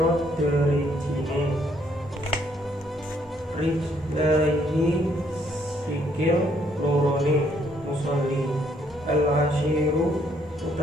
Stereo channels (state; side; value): normal; both; correlation 0.69